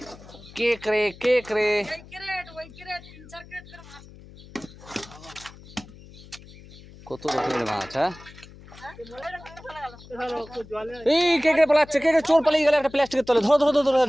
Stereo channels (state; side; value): noise; left; hum, 20 dB below the sound